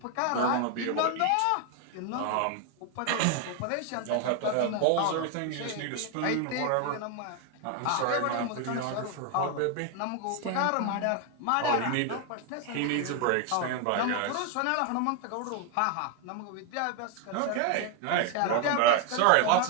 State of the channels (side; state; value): both; different; correlation 0.01